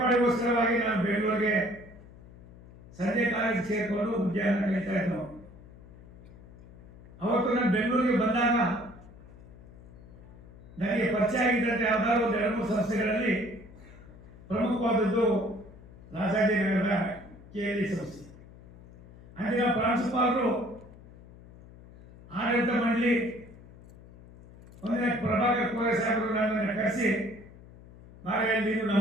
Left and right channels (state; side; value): noise; left; hum, 20 dB below the sound